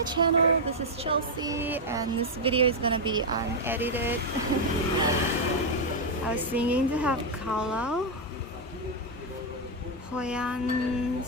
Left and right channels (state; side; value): normal; both; correlation 0.00